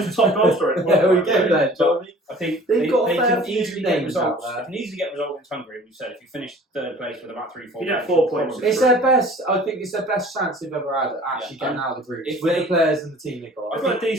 top goal scorer. There we go then, Johnny. I think They've they, got a they fair can few easily get names out results. there. They can easily get results against Hungary. We said if you finish third place with about 3-4 You get games, 4 you're points. probably It's through. their best. I think it's their best chance they've ever had at actually Yeah, getting out of the group if with they- the players and the team they got. I've got a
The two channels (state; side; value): normal; both; correlation 0.48